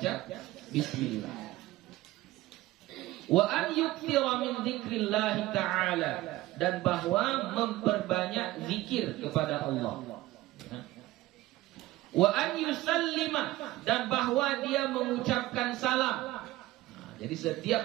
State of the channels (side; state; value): left; quieter; 17.3 dB